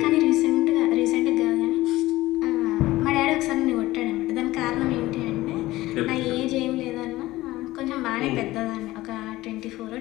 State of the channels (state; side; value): quieter; right; 17.5 dB